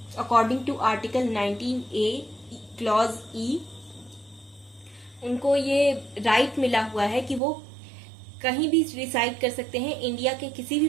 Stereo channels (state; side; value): drops out; left; at 7.4 s